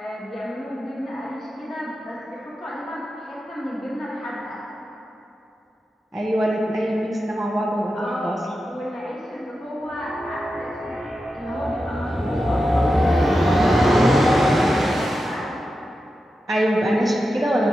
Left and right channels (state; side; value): normal; both; correlation 0.90